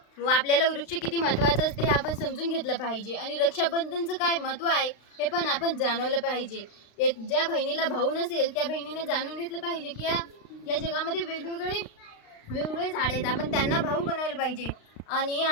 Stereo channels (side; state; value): right; late; 35 ms